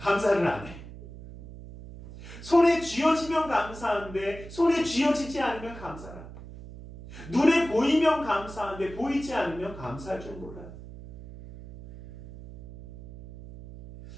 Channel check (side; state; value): right; noise; hum, 15 dB below the sound